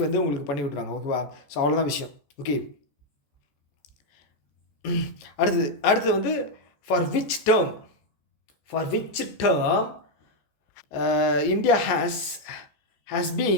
வந்து உங்களுக்கு பண்ணி விட்ருவாங்க. ஓகேவா? ஸோ அவ்வளோதான் விஷயம். ஓகே, அடுத்தது வந்து for which term India has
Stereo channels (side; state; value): right; late; 14 ms